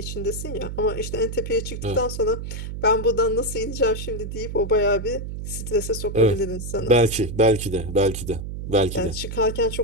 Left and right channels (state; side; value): noise; right; hum, 7 dB below the sound